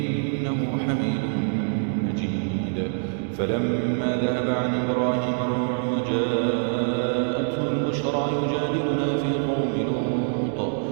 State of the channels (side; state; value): left; silent; digital silence